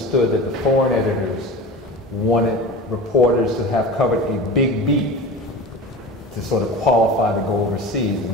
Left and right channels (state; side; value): normal; both; correlation 0.33